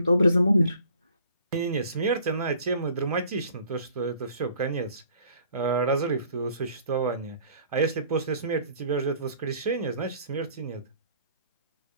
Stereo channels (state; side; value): inverted; both; correlation -0.54